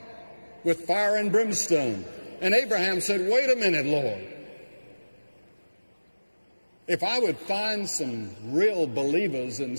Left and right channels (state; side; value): inverted; both; correlation -1.00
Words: with fire and brimstone. And Abraham said, "Wait a minute, Lord. If I would find some real believers in